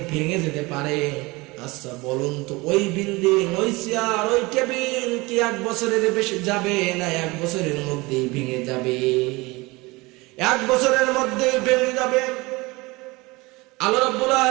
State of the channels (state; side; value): quieter; left; 23.3 dB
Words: ভেঙে যেতে পারে, আচ্ছা বলুন তো ওই বিল্ডিং, ওই চেয়ার, ওই টেবিল কি 1 বছরের বেশি যাবে না 1 বছরের মধ্যেই ভেঙে যাবে? 1 বছরের মধ্যেই ভেঙে যাবে। আল্লাহ রাব্বুল